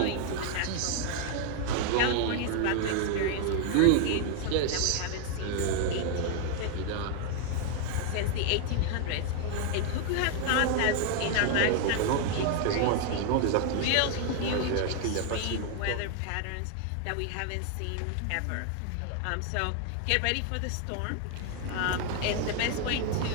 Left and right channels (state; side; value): different; both; correlation 0.00